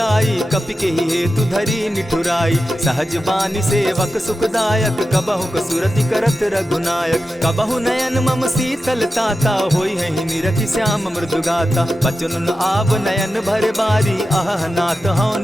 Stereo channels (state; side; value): normal; both; correlation 0.92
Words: कपि के ही हेतु धरी निठुराई। सहज बानी सेवक सुखदायक, कबहु कसुरति करत रघुनायक। कबहु नयन मम शीतल ताता, होई है निरखि श्याम मृदु गाता। बचन आव नयन भर बारी, आह नाथ हौ